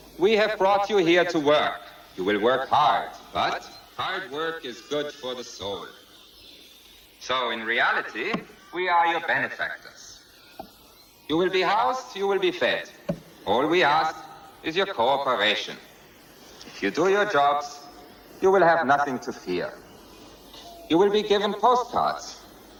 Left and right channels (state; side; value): identical; both; correlation 1.00